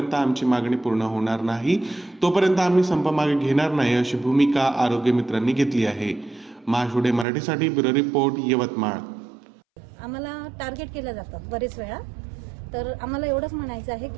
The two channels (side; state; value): left; drops out; at 7.2 s